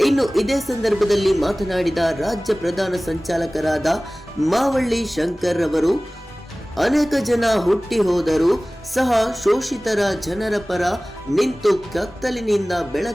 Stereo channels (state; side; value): normal; both; correlation 0.98